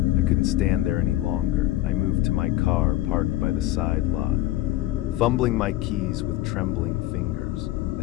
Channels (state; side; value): quieter; right; 15.5 dB